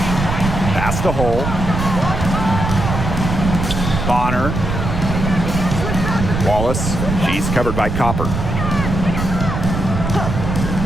Pass to Hole. Bonner. Wallace. She's covered by Copper.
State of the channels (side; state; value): right; noise; rumble, 3 dB below the sound